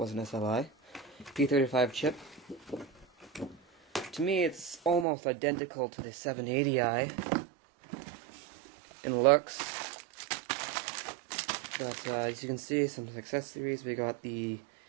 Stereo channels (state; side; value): drops out; left; at 5.1 s